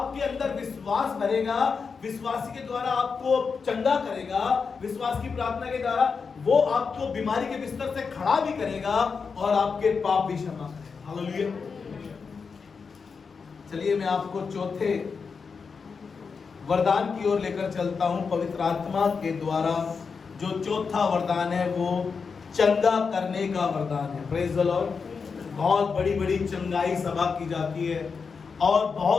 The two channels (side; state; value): right; quieter; 5.3 dB